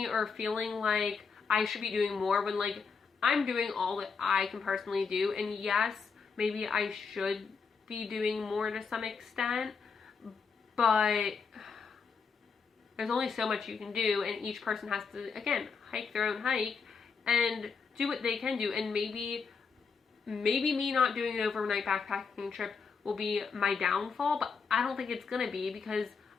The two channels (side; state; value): right; quieter; 5.4 dB